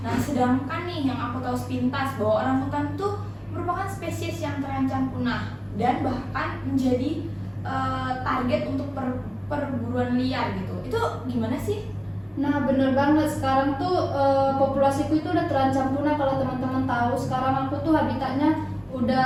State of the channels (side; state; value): both; identical; correlation 1.00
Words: Nah, sedangkan nih yang aku tahu sepintas bahwa orangutan tuh merupakan spesies yang terancam punah dan bahkan menjadi target untuk perburuan liar gitu. Itu gimana sih? Nah, bener banget. Sekarang tuh populasiku itu udah terancam punah. Kalau teman-teman tahu, sekarang aku tuh habitatnya